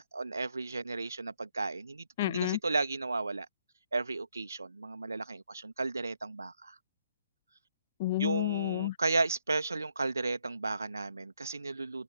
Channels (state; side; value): inverted; both; correlation -0.74